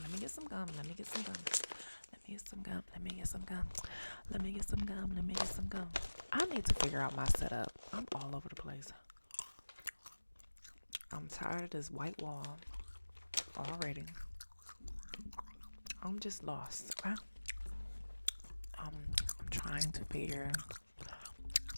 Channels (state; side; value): inverted; both; correlation -1.00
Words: me get some gum. Let me get some gum. Let me get some gum. Let me get some gum. Let me get some gum. Let me get some gum. I need to figure out my setup. I'm all over the place. I'm tired of this white wall already. I'm just lost. Okay? I'm trying to figure